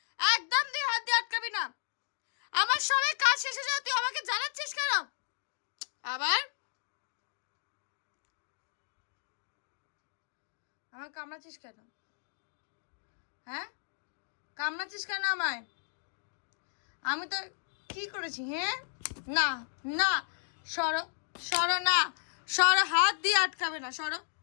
একদম দিয়ে হাত দিয়ে আটকাবি না। আমার সবাই কাজ শেষে যাও, তুই আমাকে জানাচ্ছিস কেন আবার? আমার কামড়াচ্ছিস কেন? হ্যাঁ কামড়াচ্ছিস কেন আমায়? আমি তো কি করেছি? হ্যাঁ না না, সরো সরো, না সরো, হাত দিয়ে আটকাবে না, সরো।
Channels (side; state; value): right; silent; digital silence